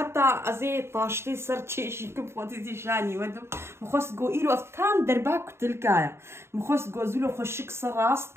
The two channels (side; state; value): left; late; 0.12 ms